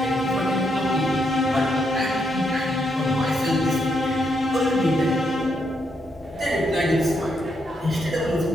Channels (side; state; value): both; normal; correlation 0.78